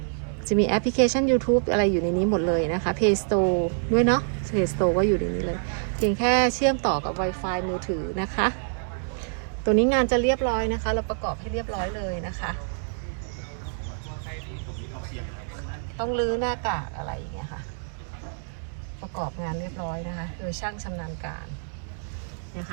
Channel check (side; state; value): left; silent; digital silence